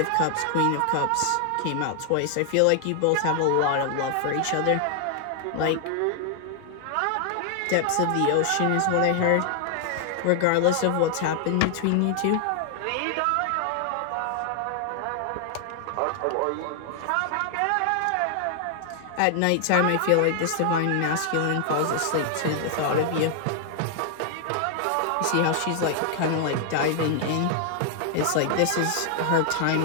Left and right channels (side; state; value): both; different; correlation 0.00